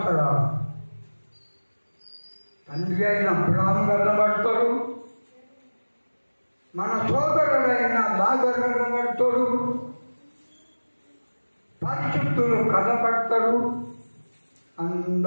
తండ్రి అయిన అబ్రాము కన్నబడతాడు, మన సోదరుడైన లాజరు కనబడతాడు, పరిశుద్ధులు కనబడతాడు,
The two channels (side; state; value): both; inverted; correlation -1.00